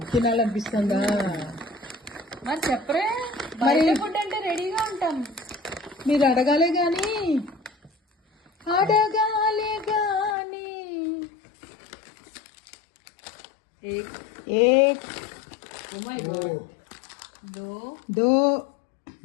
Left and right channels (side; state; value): right; drops out; at 10.4 s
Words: తినాలనిపిస్తుందా? మరి చెప్పరే, బయట ఫుడ్ అంటే రెడీగా ఉంటాం. మీరు అడగాలే గాని అడగాలే గాని. एक Oh my God. दो